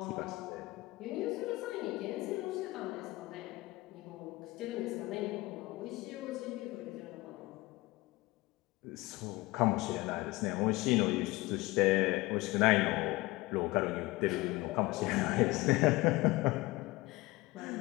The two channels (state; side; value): quieter; right; 21.0 dB